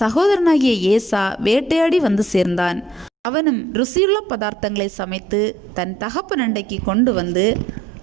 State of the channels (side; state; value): left; drops out; at 3.1 s